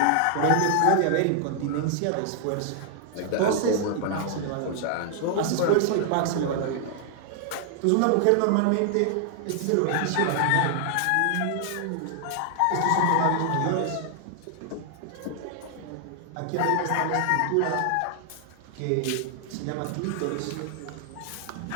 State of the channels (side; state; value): both; different; correlation 0.00